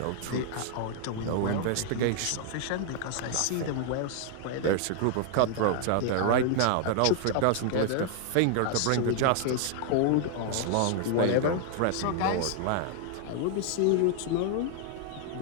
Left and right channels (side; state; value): both; different; correlation 0.00